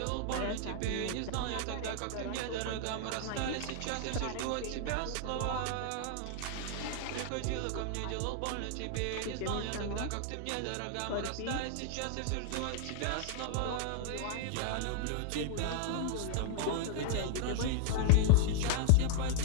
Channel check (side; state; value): both; different; correlation -0.01